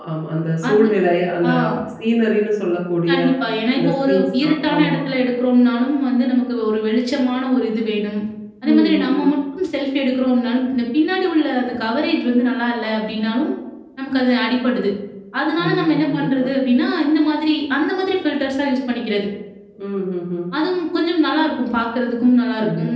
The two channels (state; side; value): identical; both; correlation 1.00